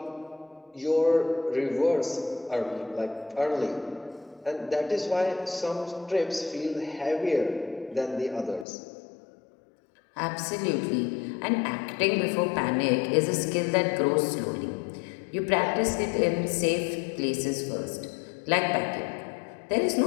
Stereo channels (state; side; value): drops out; right; at 8.7 s